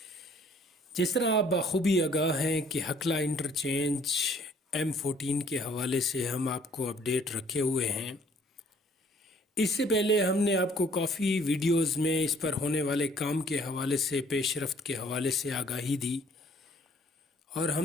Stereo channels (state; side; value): normal; both; correlation 0.60